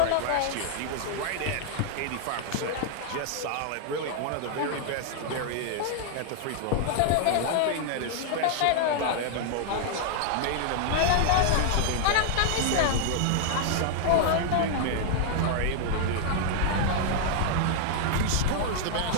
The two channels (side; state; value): both; different; correlation 0.00